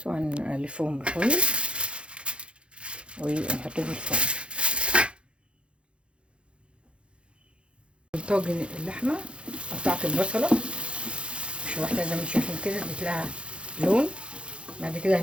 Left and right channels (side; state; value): left; late; 0.057 ms